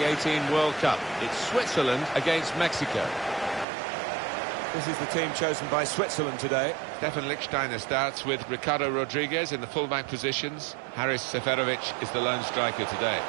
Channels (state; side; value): drops out; left; at 3.7 s